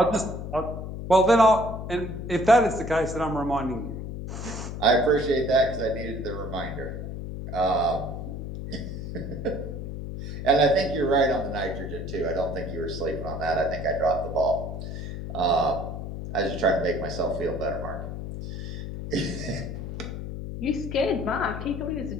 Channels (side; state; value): left; noise; hum, 7 dB below the sound